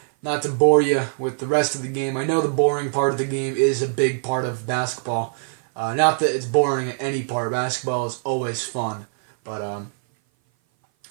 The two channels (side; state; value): left; silent; 57 dB below the other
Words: Not to bore you with the rest of the game. I know the boring part of the game is a big part of basketball. Not that it's boring at any part. Basketball is always fun. But